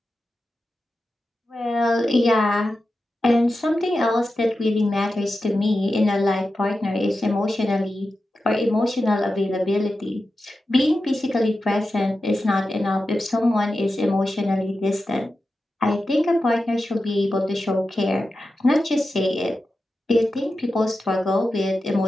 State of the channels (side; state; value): both; normal; correlation 0.92